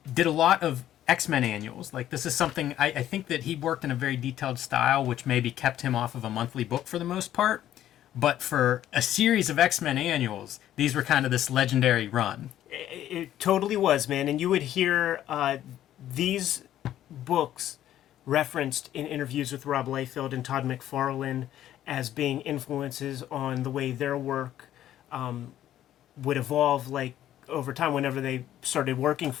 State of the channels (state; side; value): quieter; right; 12.1 dB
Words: did a lot of X-Men annuals. Like, this is something, I think that he worked in a very detailed style, which maybe kept him off of a monthly book for the most part. But for a series of X-Men annuals, these were kind of this legendary run. It totally was, man. And you would hear these books referenced in interviews with Rob Liefeld and Todd McFarlane as being influences on the way their work would evolve, like, over time whenever they started working